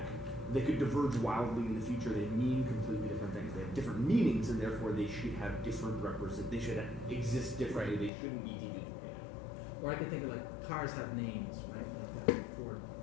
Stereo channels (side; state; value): right; drops out; at 8.1 s